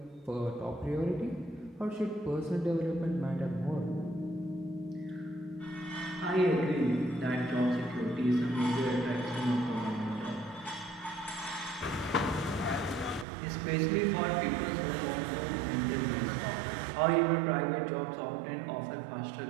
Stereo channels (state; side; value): drops out; left; at 13.2 s